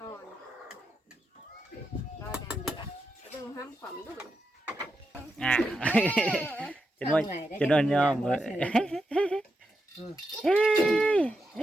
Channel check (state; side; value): normal; both; correlation 0.86